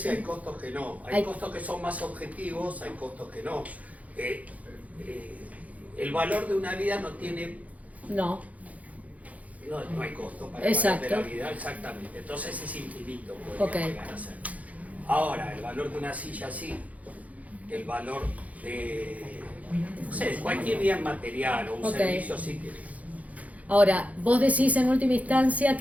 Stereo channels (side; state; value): left; late; 0.071 ms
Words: y hay costos que no. Hay costos que son más objetivos, hay costos que no. El valor de una vida no tiene... No hay costo para el valor de la vida, exactamente. Entonces es infinito, podría llegar a ser. Ahora, el valor de una silla sí. El valor de... No sé, cualquier bien material o un servicio sí tiene. Ahora, vos decís en última instancia